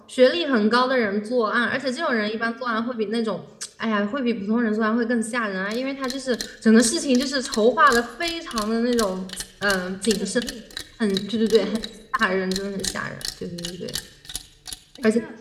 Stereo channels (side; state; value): both; identical; correlation 1.00